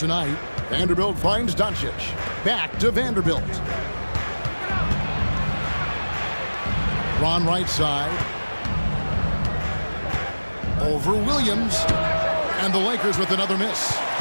Vanderbilt finds Doncic. Back to Vanderbilt. Ron right side. Over Williams. And the Lakers with another miss.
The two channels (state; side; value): inverted; both; correlation -1.00